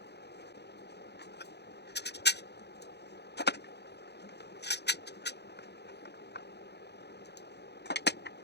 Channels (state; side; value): late; right; 0.49 ms